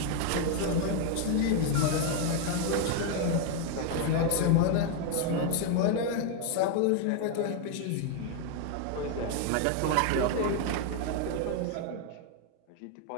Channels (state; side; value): different; both; correlation 0.01